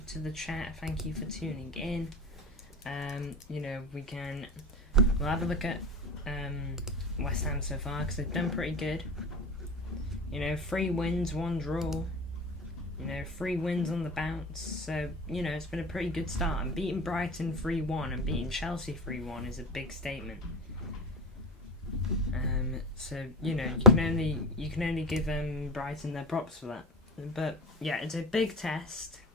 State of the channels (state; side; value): normal; both; correlation 0.28